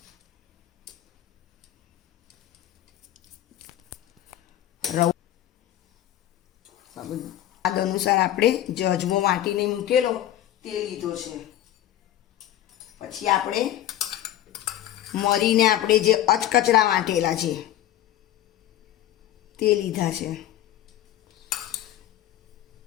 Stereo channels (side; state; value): right; quieter; 12.7 dB